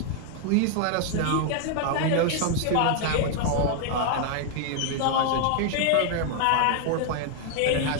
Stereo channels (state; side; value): different; both; correlation 0.00